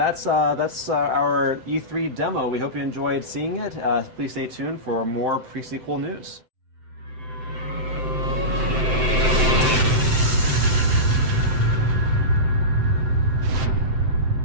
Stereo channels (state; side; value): late; left; 7.8 ms